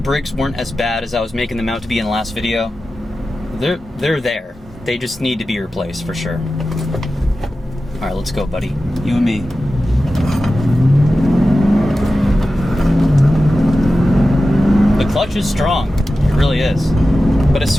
weren't as bad as I was making them out to be in the last video. They're there. They just need to be replaced for sure. All right, let's go, buddy. You and me. The clutch is strong. It really is. But as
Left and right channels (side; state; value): both; normal; correlation 0.93